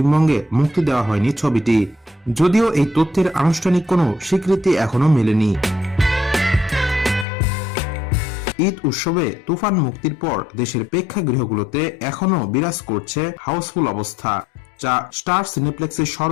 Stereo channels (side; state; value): right; drops out; at 7.2 s